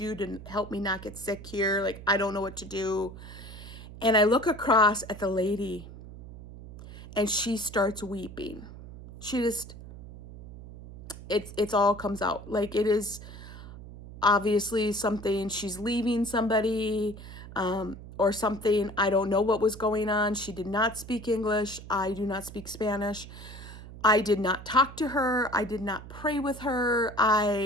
to help me not get sick here. Like, I don't know what to do. And I look across at the lady and she starts weeping. She just, it's all comes out. Like, it is obviously something, she's leaving somebody, or something. I don't know what was going on. She did not speak English. I do not speak Spanish. I did not talk to her. I did not pray with her.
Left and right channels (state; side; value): noise; right; hum, 14 dB below the sound